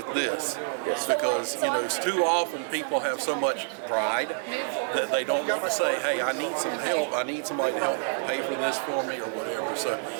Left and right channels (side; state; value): left; silent; digital silence